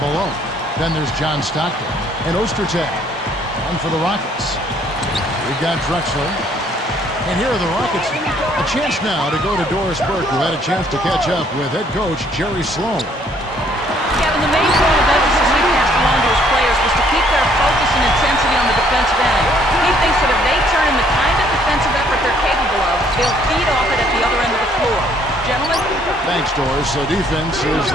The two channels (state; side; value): normal; both; correlation 0.64